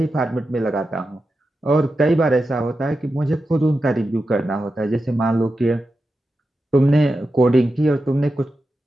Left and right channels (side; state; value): both; normal; correlation 0.90